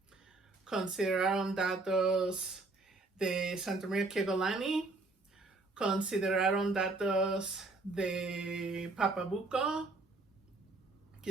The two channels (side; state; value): left; quieter; 3.4 dB